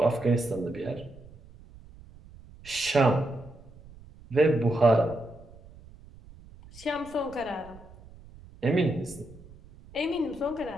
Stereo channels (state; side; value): noise; right; rumble, 21 dB below the sound